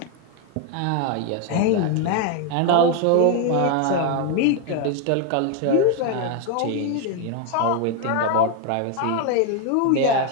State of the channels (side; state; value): both; different; correlation 0.01